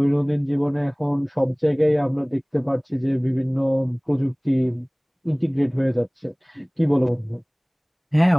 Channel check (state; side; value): identical; both; correlation 1.00